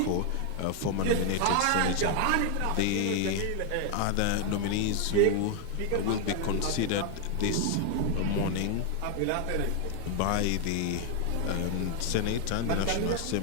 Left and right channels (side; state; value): both; different; correlation 0.01